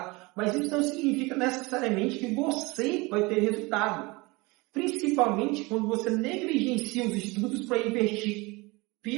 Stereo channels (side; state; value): left; quieter; 24.6 dB